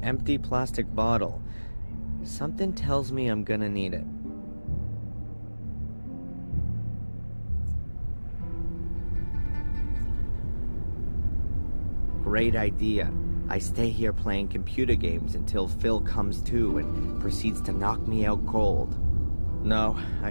empty plastic bottle. Something tells me I'm gonna need it. Great idea. I stay here playing computer games until Phil comes to and proceeds to knock me out cold. No, I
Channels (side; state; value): both; inverted; correlation -1.00